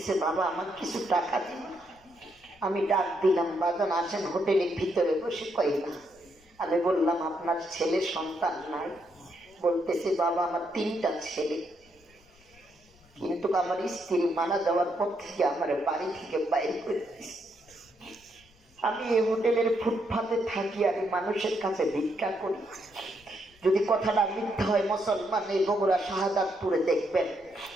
বাবা আমার কিছু টাকা দিন। আমি ডাক দিলাম, বাজান আছেন হোটেলের ভিতরে বসে? কই না। আমি বললাম আপনার ছেলে সন্তান নাই? বলতেছে বাবা আমার 3টা ছেলে, কিন্তু আমার স্ত্রী মারা যাওয়ার পর থেকে আমার বাড়ি থেকে বাইরে করে দিয়েছে। আমি এই হোটেলের ফুটপাতে থাকি আর মানুষের কাছে ভিক্ষা করি। যদি কথাটা মিথ্যা হয় মুসলমান এই বগুড়া শাহাদাতপুরে দেখবেন,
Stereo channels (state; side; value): noise; left; rumble, 30 dB below the sound